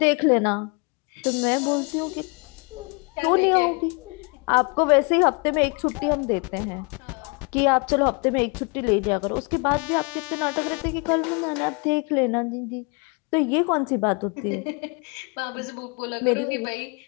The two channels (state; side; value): quieter; right; 32.2 dB